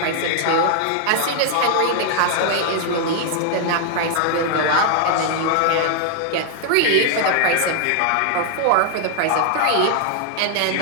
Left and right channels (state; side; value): different; both; correlation 0.00